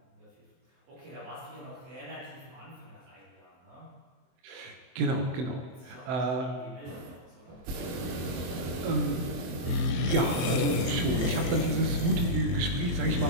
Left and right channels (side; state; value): left; late; 23 ms